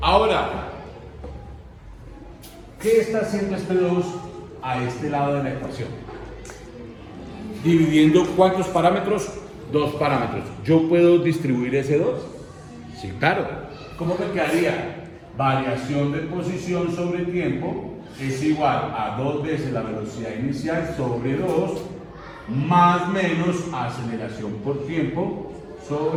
¿qué está haciendo este 2 a este lado de la ecuación? Dividiendo ¿cuántos parámetros? 2 parámetros. ¿Yo puedo distribuir ese 2? Sí, claro. ¿Cómo me quedaría? Variación de posición sobre tiempo es igual a 2 veces la velocidad inicial sobre 2 más menos aceleración por tiempo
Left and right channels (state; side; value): identical; both; correlation 1.00